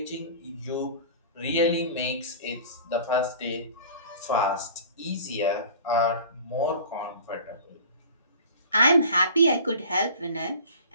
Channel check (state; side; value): inverted; both; correlation -0.42